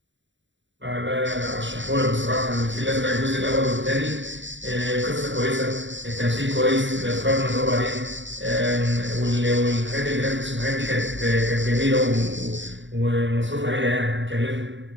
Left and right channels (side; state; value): left; late; 0.54 ms